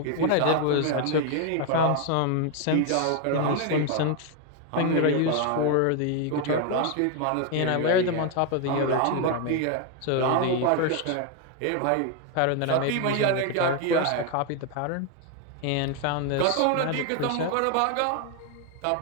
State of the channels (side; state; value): both; different; correlation 0.01